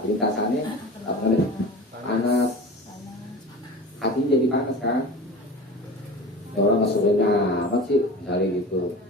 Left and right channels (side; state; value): both; normal; correlation 0.35